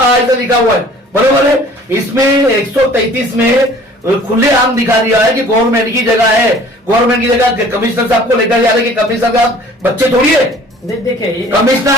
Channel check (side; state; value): both; normal; correlation 0.50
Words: लिखा हुआ है, बरोबर है। इसमें 133 में खुले आम दिखा दिया है कि गवर्नमेंट की जगह है। गवर्नमेंट की जगह कमिश्नर साहब को लेकर जा रहे कि कमिश्नर साहब बच्चे थोड़ी है। देखिए